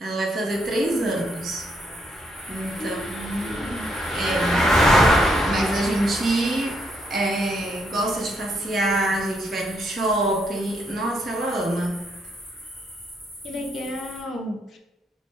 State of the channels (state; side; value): normal; both; correlation 0.75